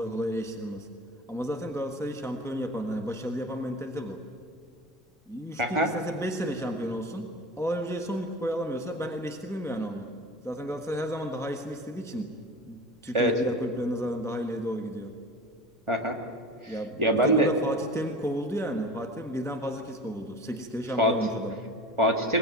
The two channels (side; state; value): both; normal; correlation 0.35